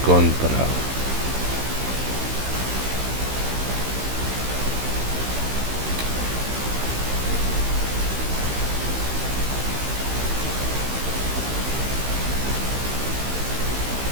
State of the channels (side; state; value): left; late; 15 ms